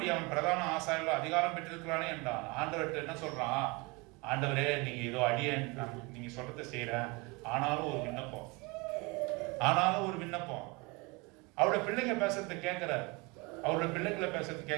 அவன் பிரதான ஆசாரியர்கள் அதிகாரம் பெற்றிருக்கிறானே என்றான். ஆண்டவர்கிட்ட என்ன சொல்றான்? ஆண்டவரே, நீங்க ஏதோ அடியேன், நீங்க சொல்றதை செய்யறேன், ஆனாலும் ஒரு விண்ணப்பம். அவரோட பிள்ளைங்க பேசுறதை கேட்கிறார், அவரோட பிள்ளைங்களை பேசுறது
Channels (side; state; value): left; quieter; 26.9 dB